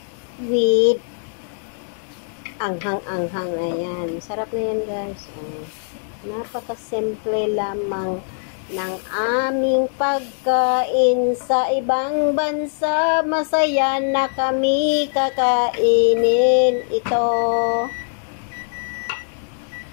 with anghang-anghang. Ayan. Sarap na yan, guys. Napakasimple lamang ng aming pagkain sa ibang bansa. Masaya na kami kakainin ito.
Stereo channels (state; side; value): silent; right; digital silence